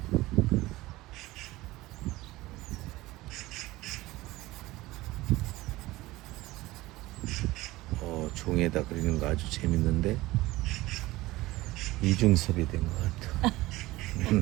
종에다 그리는 거 아주 재밌는데 이중섭이 된 것 같아.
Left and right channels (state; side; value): quieter; left; 18.9 dB